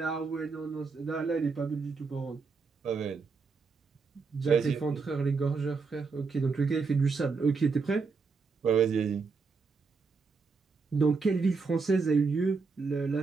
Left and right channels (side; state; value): left; quieter; 4.7 dB